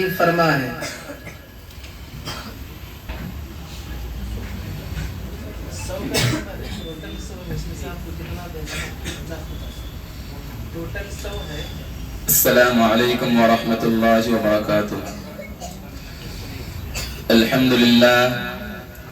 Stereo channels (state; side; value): identical; both; correlation 1.00